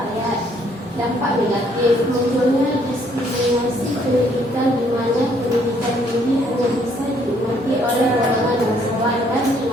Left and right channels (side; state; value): both; normal; correlation 0.66